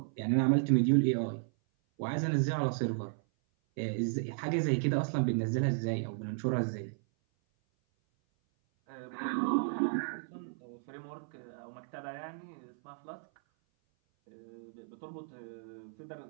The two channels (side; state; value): left; silent; 55 dB below the other